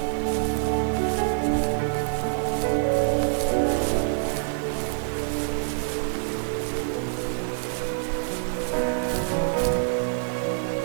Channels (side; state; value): left; silent; digital silence